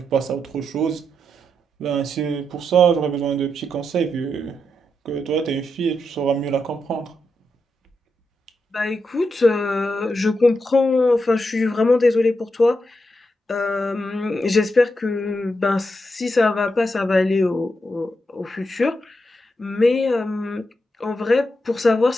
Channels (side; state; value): both; normal; correlation 0.84